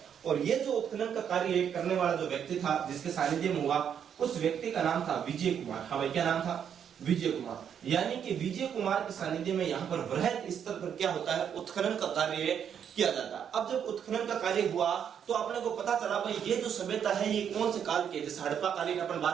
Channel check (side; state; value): left; quieter; 8.3 dB